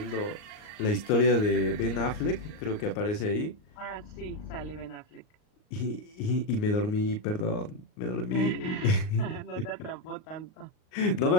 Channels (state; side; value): late; right; 38 ms